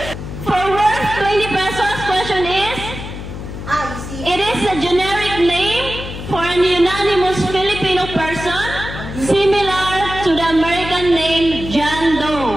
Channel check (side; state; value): left; noise; hum, 9 dB below the sound